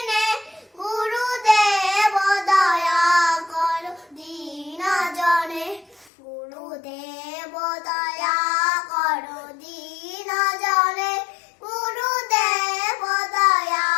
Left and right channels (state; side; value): drops out; right; at 6.1 s